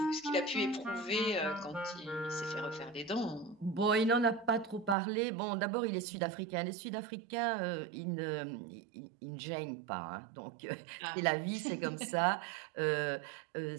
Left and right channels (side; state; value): left; drops out; at 5.0 s